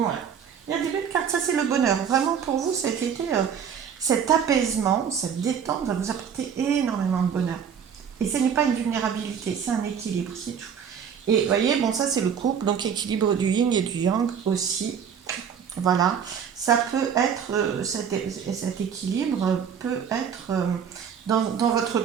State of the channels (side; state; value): left; quieter; 7.5 dB